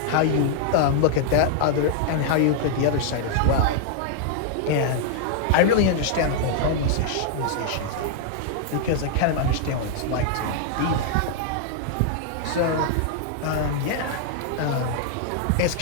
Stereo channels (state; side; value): different; both; correlation -0.01